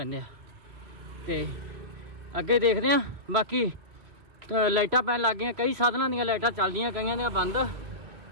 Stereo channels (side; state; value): left; late; 3.0 ms